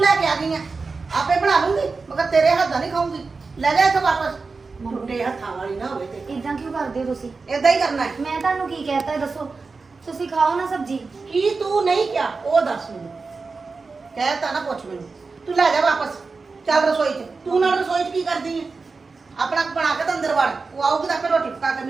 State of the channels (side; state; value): left; quieter; 4.3 dB